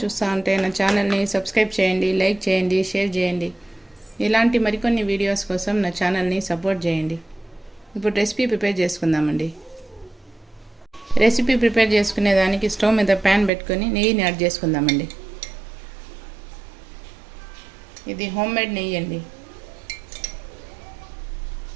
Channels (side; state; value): left; drops out; at 13.5 s